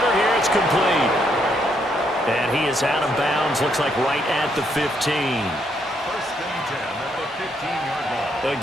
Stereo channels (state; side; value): normal; both; correlation 0.74